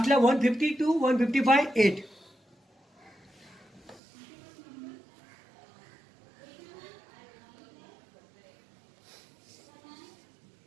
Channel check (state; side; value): drops out; left; at 4.0 s